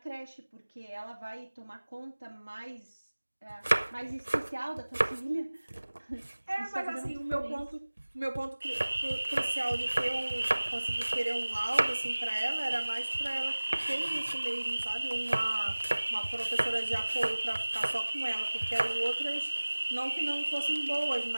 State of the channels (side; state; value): both; inverted; correlation -1.00